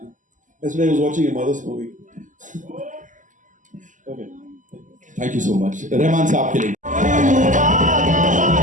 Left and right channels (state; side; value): late; left; 0.37 ms